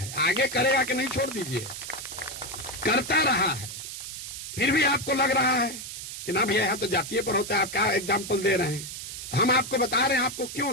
आगे करेगा कि नहीं छोड़ दीजिए, करता रहा है। फिर भी आपको लग रहा है कि ना भैया यहां तो जातीय पर होता है, आप क्या एग्जाम्पल दे रहे हैं? हम आपको बता रहे हैं आपको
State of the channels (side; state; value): right; noise; hiss, 9 dB below the sound